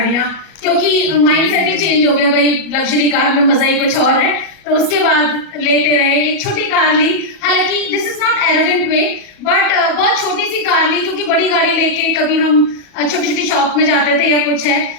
क्योंकि माइंडसेट ही चेंज हो गया भाई, लग्जरी कार में मजा ही कुछ और है। तो उसके बाद लेते रहे, एक छोटी कार ली, हालांकि this is not arrogant way, but बहुत छोटी सी कार ली, क्योंकि बड़ी गाड़ी लेके कभी हम छोटी छोटी शॉप में जाते थे या कुछ है,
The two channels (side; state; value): right; late; 37 ms